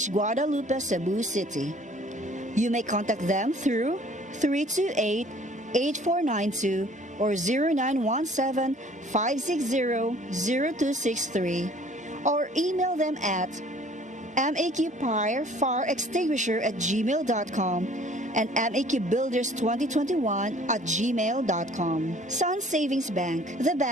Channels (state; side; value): normal; both; correlation 0.54